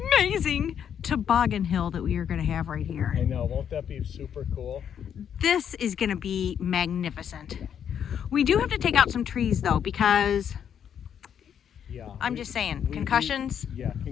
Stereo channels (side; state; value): right; quieter; 8.6 dB